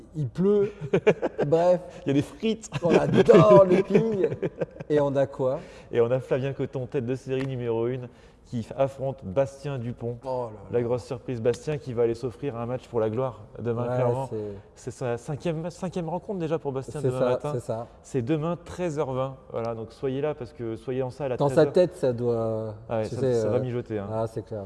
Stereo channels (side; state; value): both; identical; correlation 1.00